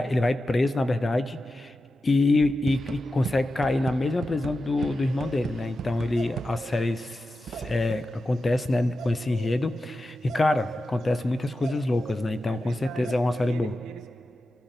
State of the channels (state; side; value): normal; both; correlation 0.91